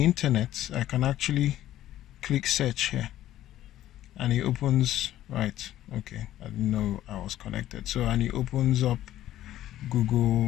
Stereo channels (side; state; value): right; quieter; 13.3 dB